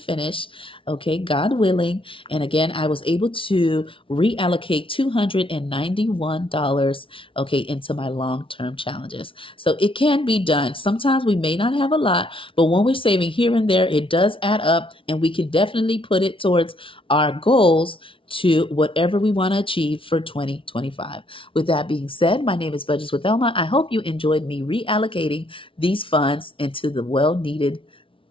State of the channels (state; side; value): late; right; 0.25 ms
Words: okay, God willing. And again, I was able to reallocate $291, okay, into my long-term challenges. So it can be done. Sometimes we may not have a lot, but when we're saving here and there, it does add up, and we can definitely put it towards our goals to whatever we want to achieve for 2025. With that being said, my name is Budgets with Elma. I hope you enjoyed me reallocating these funds into the well-needed